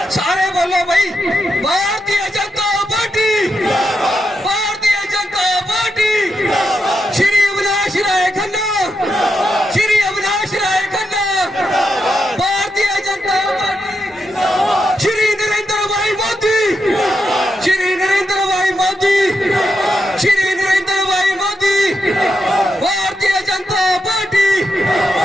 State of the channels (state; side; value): normal; both; correlation 0.84